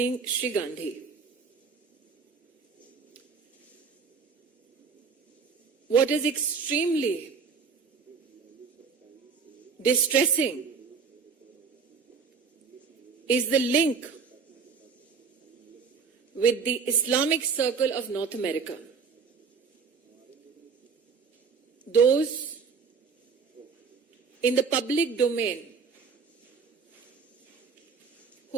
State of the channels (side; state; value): left; quieter; 5.5 dB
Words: Sri Gandhi. What is extremely distressing is the link with the Islamic Circle of North America. Those in the public domain